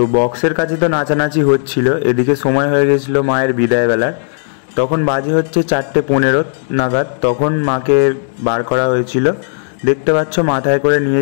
বক্সের কাছে তো নাচানাচি হচ্ছিল, এদিকে সময় হয়ে গেছিলো মায়ের বিদায় বেলার। তখন বাজে হচ্ছে 4:15 নাগাদ। তখন মাকে বার করা হয়েছিল, দেখতে পাচ্ছ মাথায় করে নিয়ে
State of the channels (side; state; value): right; silent; digital silence